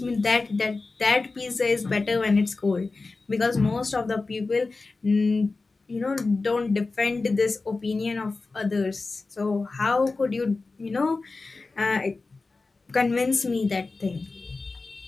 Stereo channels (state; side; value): quieter; right; 3.7 dB